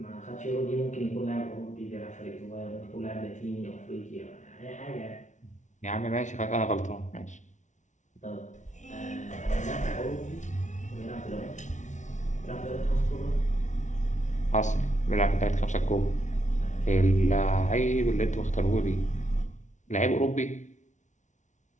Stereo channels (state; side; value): late; right; 0.36 ms